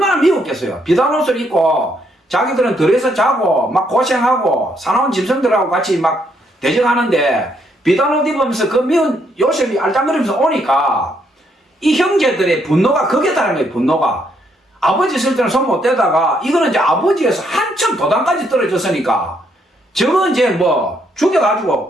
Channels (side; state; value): both; normal; correlation 0.73